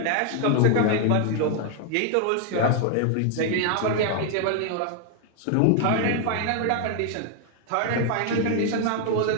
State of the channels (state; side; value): different; both; correlation 0.00